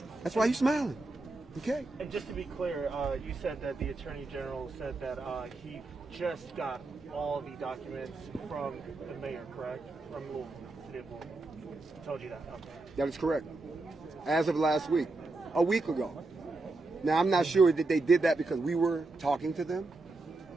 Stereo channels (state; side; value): quieter; left; 3.2 dB